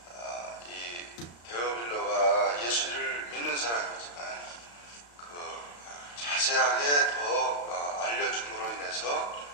이 데오빌로가 예수를 믿는 사람이지만 그 자세하게 더 알려줌으로 인해서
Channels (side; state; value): right; late; 35 ms